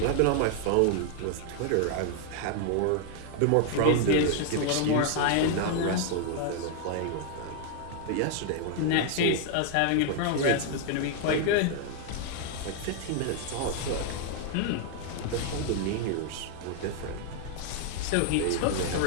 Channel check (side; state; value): both; different; correlation 0.00